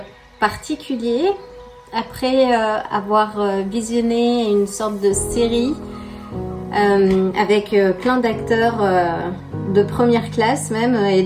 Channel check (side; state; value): both; identical; correlation 1.00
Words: particulier. Après avoir visionné une sorte de série avec plein d'acteurs de première classe même et